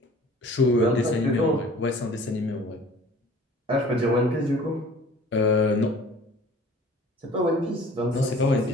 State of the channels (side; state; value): both; normal; correlation 0.48